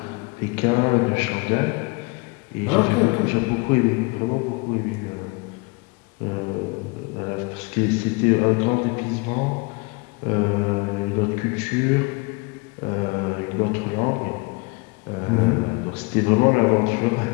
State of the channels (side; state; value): right; quieter; 28.2 dB